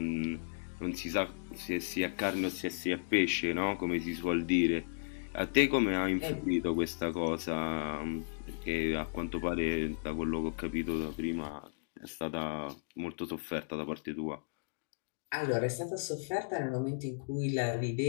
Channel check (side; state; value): right; silent; digital silence